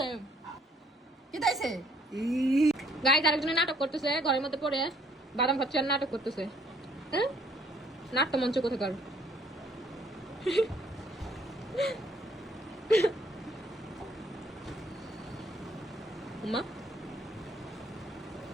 পড়তেছে কি তাইছে গাইস আরেকজনে নাটক করতেছে ঘরের মধ্যে পড়ে বাদাম খাচ্ছে আর নাটক করতেছে হ্যাঁ নাট্য মঞ্চ কোথাকার মা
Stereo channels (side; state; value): both; normal; correlation 0.63